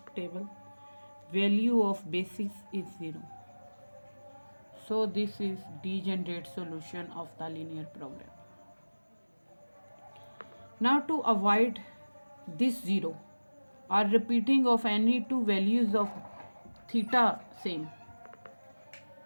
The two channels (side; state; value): both; inverted; correlation -1.00